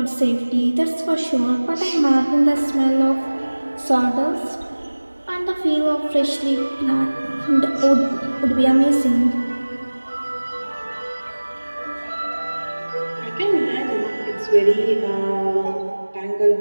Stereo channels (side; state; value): both; inverted; correlation -1.00